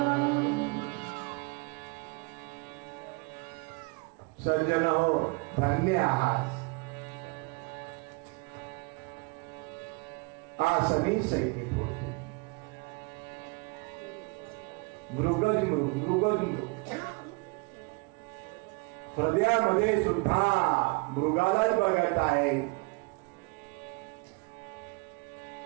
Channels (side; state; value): left; quieter; 29.8 dB